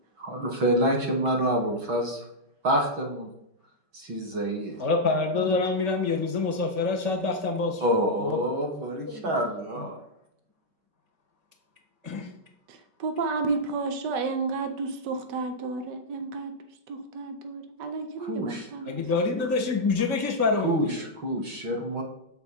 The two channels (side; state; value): left; late; 5.2 ms